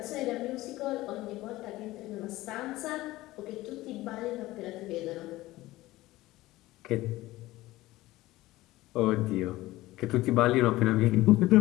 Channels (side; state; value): right; quieter; 17.8 dB